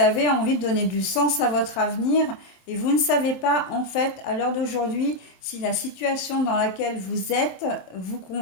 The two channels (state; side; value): late; right; 27 ms